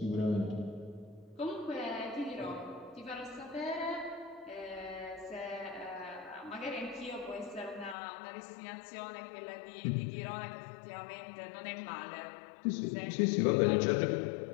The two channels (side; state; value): right; drops out; at 8.0 s